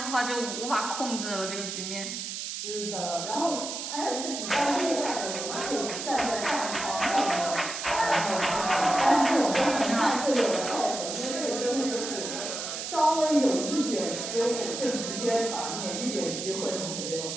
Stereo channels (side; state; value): right; noise; hiss, 5 dB below the sound